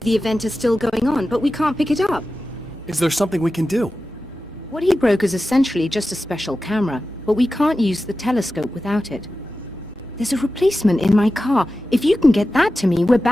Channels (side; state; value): both; normal; correlation 0.94